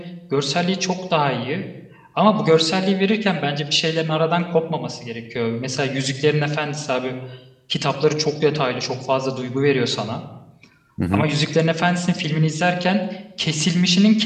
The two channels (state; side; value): identical; both; correlation 1.00